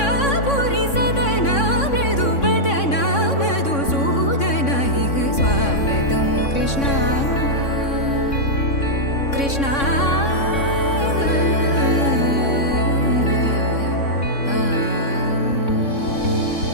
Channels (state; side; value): late; right; 3.6 ms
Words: सदन मृदुवदन मधुसूदन इह स्वागतं कृष्ण कृष्ण